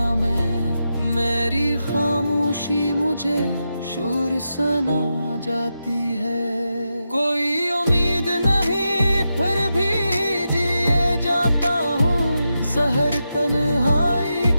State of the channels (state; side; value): inverted; both; correlation -0.88